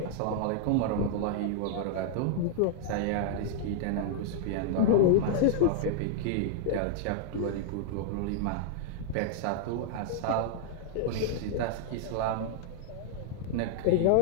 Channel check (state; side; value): different; both; correlation -0.01